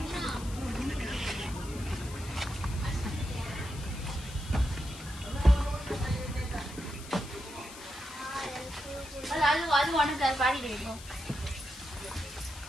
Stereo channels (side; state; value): left; noise; hiss, 15 dB below the sound